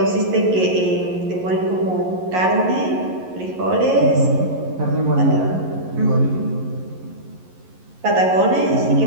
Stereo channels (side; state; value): left; late; 11 ms